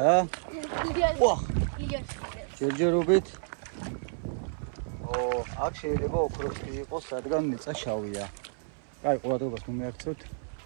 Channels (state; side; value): silent; left; 58 dB below the other